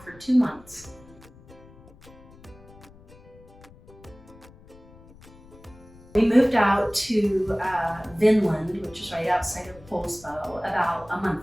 for 2 months. We moved out to Vinland, which is right outside of Poulsbo, about a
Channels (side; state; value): left; noise; rumble, 23 dB below the sound